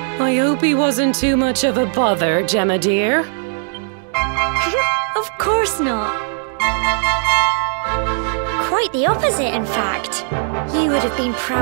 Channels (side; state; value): left; silent; 59 dB below the other